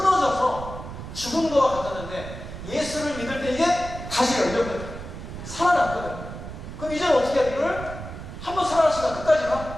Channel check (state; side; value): noise; right; rumble, 10 dB below the sound